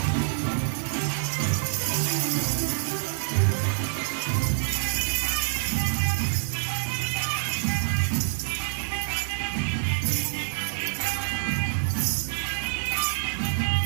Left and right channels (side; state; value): left; silent; digital silence